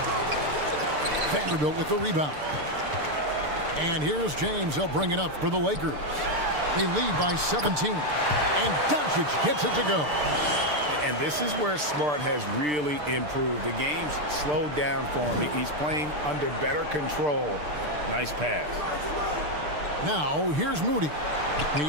Vanderbilt with the rebound. And here's James. He'll bring it up for the Lakers. They lead by 17. And Doncic gets it to go. And this is where Smart has really improved. The game's slowed down for him. He's playing under better control. Nice pass. Now, here's Moody.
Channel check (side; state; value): left; late; 6.7 ms